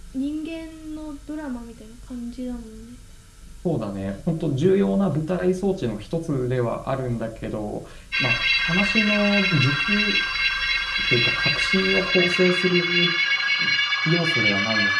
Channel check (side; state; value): both; identical; correlation 1.00